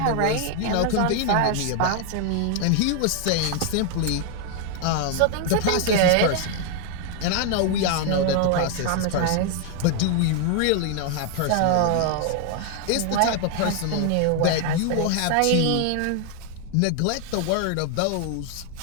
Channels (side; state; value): both; different; correlation 0.00